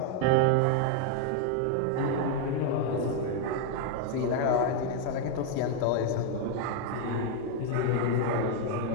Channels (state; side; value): different; both; correlation 0.00